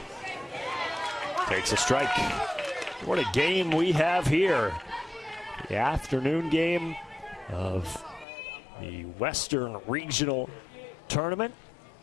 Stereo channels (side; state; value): right; drops out; at 8.2 s